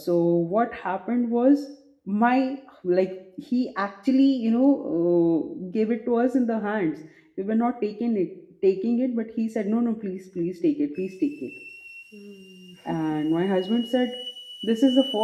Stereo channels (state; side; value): identical; both; correlation 1.00